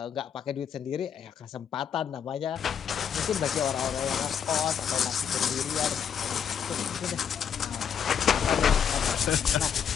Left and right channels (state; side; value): quieter; right; 7.9 dB